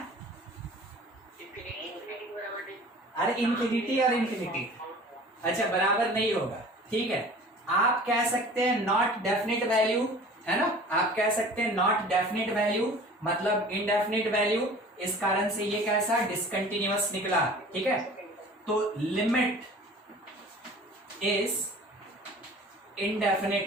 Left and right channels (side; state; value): both; normal; correlation 0.44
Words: अरे इन्फिनिटी और इन्फिनिटी, अच्छा बराबर नहीं होगा, ठीक है। आप कह सकते हैं नॉट डेफिनेट वैल्यू, है ना, आप कह सकते हैं नॉट डेफिनेट वैल्यू मतलब इनडेफिनेट वैल्यू, इस कारण से ये कैसा डिसकंटिन्यूअस निकला, ठीक है। तो लिमिट इज